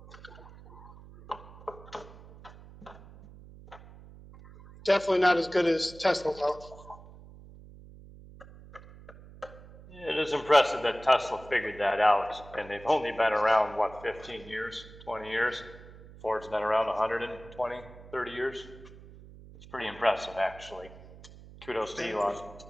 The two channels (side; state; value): right; noise; hum, 19 dB below the sound